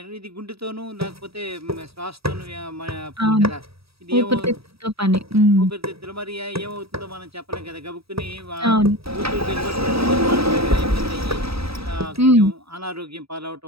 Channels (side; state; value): left; late; 0.77 ms